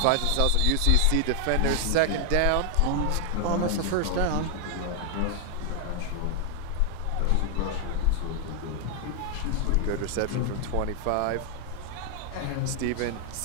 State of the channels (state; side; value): different; both; correlation 0.00